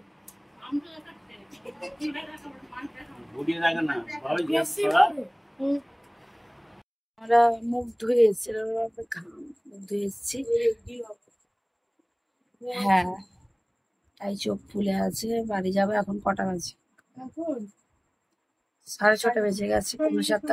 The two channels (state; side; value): identical; both; correlation 1.00